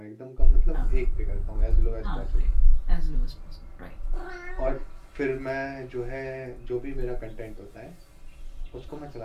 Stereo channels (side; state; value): both; identical; correlation 1.00